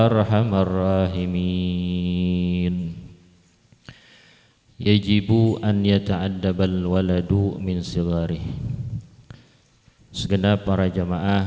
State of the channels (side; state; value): both; identical; correlation 1.00